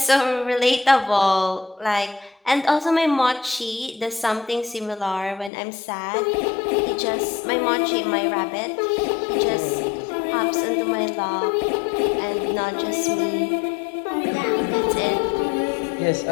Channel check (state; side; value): drops out; right; at 5.5 s